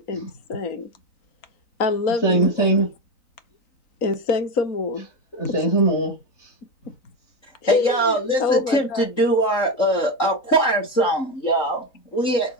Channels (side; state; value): right; late; 3.9 ms